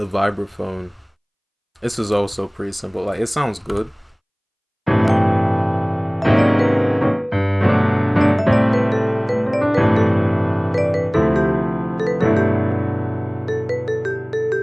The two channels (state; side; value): identical; both; correlation 1.00